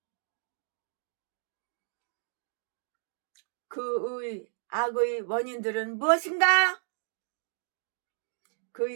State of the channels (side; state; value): left; silent; digital silence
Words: 그의 악의 원인들은 무엇인가?